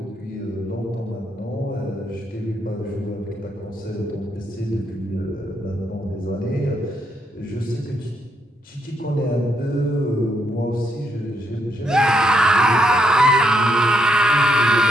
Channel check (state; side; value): normal; both; correlation 0.75